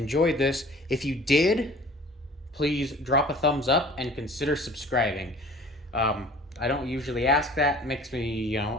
this. If you did, please drop a thumbs up and consider subscribing. I don't usually ask that. It makes me, you know,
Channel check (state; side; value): normal; both; correlation 0.47